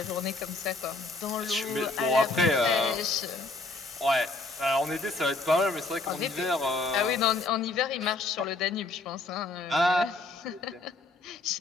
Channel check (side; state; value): right; quieter; 3.3 dB